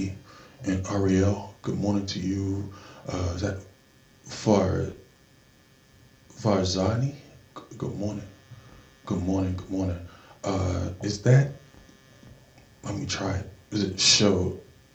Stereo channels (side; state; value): both; identical; correlation 1.00